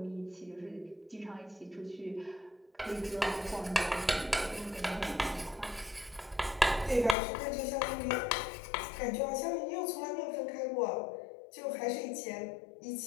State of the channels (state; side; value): drops out; right; at 7.2 s